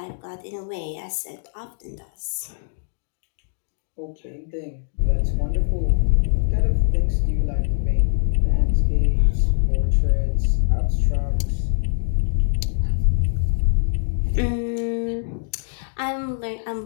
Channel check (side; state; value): right; silent; digital silence